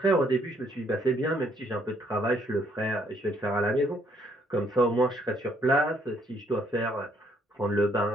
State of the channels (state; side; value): normal; both; correlation 0.68